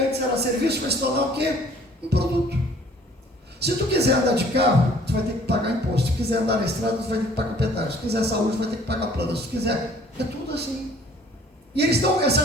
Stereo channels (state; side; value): normal; both; correlation 0.55